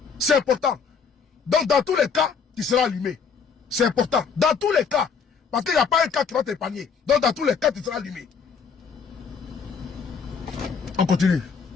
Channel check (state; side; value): quieter; right; 6.0 dB